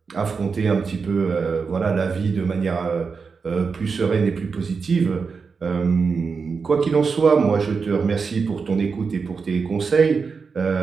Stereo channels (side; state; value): left; quieter; 5.2 dB